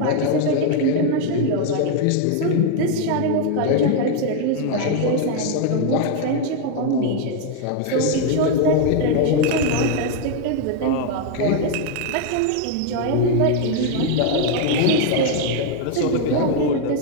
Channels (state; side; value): different; both; correlation 0.01